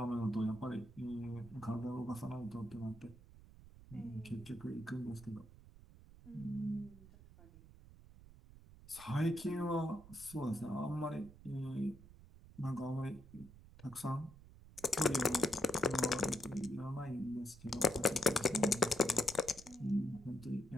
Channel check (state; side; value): noise; right; rumble, 19 dB below the sound